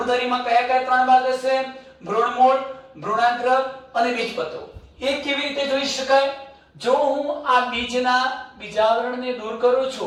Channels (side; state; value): both; identical; correlation 1.00